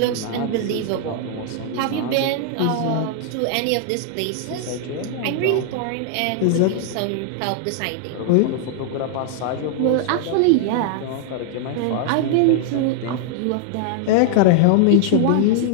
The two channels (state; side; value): different; both; correlation 0.00